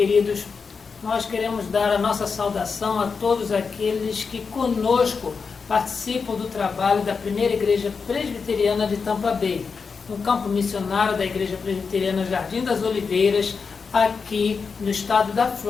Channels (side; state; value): right; quieter; 5.3 dB